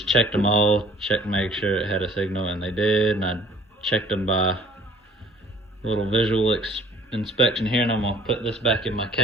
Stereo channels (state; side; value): normal; both; correlation 0.53